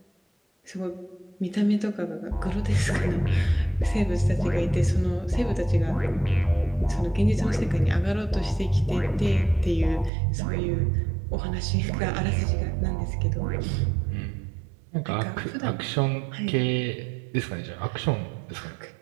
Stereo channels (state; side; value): drops out; left; at 10.1 s